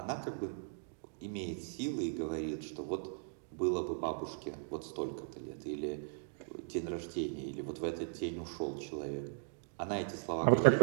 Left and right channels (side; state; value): left; silent; digital silence